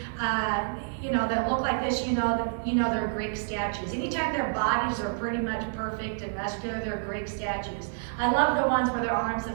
that look like this, you know they're Greek statues. Anytime their bodies are pretty much perfect and muscular, they're Greek statues. I love the ones where their arms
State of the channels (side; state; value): left; silent; digital silence